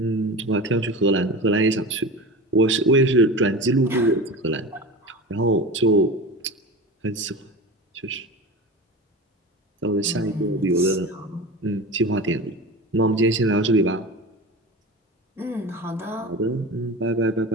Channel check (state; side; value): normal; both; correlation 0.30